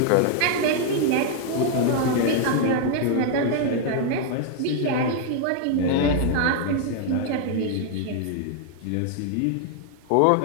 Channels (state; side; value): different; both; correlation 0.00